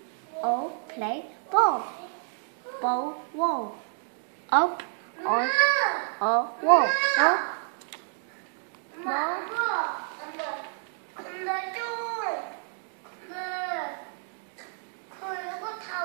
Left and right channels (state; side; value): silent; left; 59 dB below the other